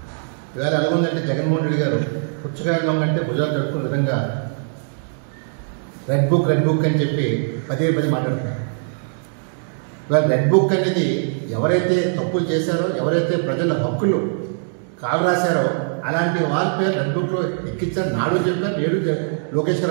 ఇవాళ ఎలా ఉందంటే జగన్మోహన్ రెడ్డి గారు పుచ్చకాయ దొంగ అంటే భుజాలు తడుకునే విధంగా రెడ్ బుక్ అని చెప్పి పదే మాట్లాడుతున్నారు. ఇవాళ రెడ్ బుక్ అనేది ఎవరైతే తప్పులు చేశారో, ఎవరైతే ప్రజల హక్కులు కాలు రాశారో అలాంటి వాళ్ళ పేరు రెడ్ బుక్లో ఎక్కించారు. నాడు చెప్పారు, నేడు లోకేష్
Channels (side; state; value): left; silent; digital silence